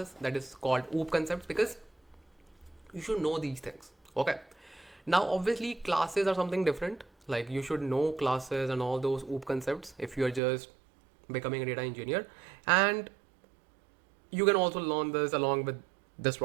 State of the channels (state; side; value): drops out; left; at 10.4 s